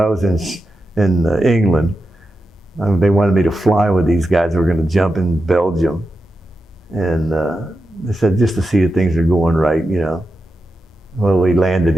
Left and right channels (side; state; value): both; normal; correlation 0.90